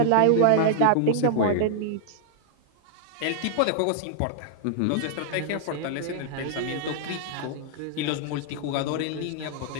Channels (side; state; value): both; different; correlation -0.01